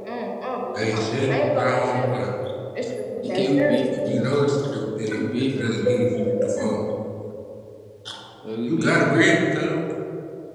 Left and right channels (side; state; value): both; identical; correlation 1.00